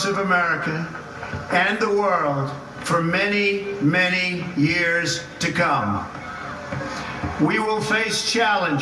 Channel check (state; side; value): identical; both; correlation 1.00